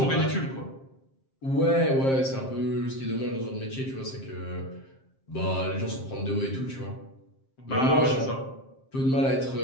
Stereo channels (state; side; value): late; right; 7.5 ms